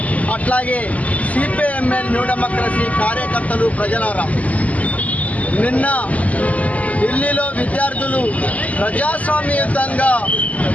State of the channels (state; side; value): late; right; 0.072 ms